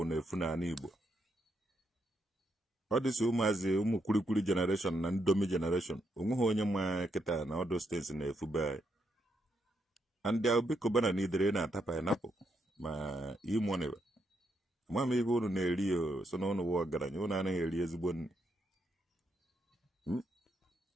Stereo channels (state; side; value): normal; both; correlation 0.79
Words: na-efu n'ala Igbo. Ọ dịsị ụmụazị ụmụ kwurikwuri generation na ndomi generation onweghị onye ma kịta na ọdụ steeti na-efu be and the Obi Cubana n'idere na-ata pineapple ma E-Money ma m ibe unu na-eri so na unu wụ ọgaranya unu anaghị eri